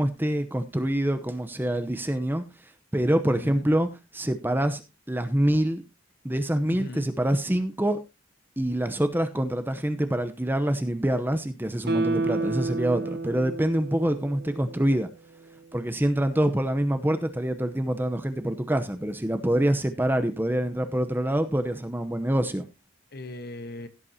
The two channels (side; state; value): both; normal; correlation 0.90